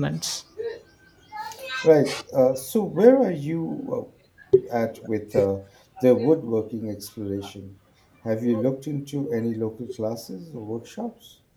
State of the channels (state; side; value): identical; both; correlation 1.00